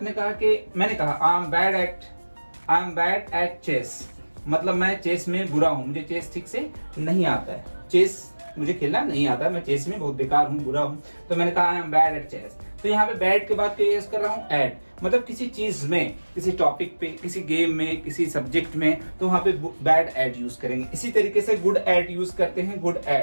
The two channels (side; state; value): both; inverted; correlation -1.00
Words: कहा कि, मैंने कहा I am bad at chess, मतलब मैं चेस में बुरा हूं, मुझे चेस ठीक से नहीं आता है, चेस मुझे खेलना नहीं आता, मैं चेस में बहुत बेकार हूं, बुरा हूं, तो मैंने कहा I am bad at chess. तो यहाँ पे बैड के बाद क्या यूज कर रहा हूँ, एट, मतलब किसी चीज में, किसी टॉपिक पे, किसी गेम में, किसी सब्जेक्ट में, तो वहां पे बैड एट यूज करेंगे। इसी तरीके से गुड एट यूज करते हैं, गुड